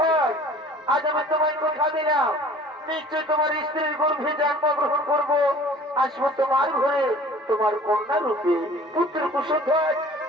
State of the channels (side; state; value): both; normal; correlation 0.48